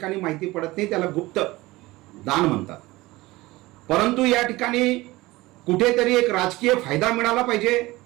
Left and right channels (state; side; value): quieter; left; 19.9 dB